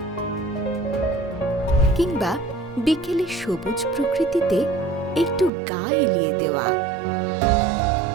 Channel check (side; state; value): left; drops out; at 5.5 s